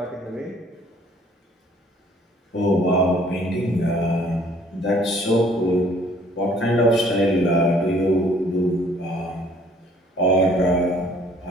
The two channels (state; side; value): normal; both; correlation 0.58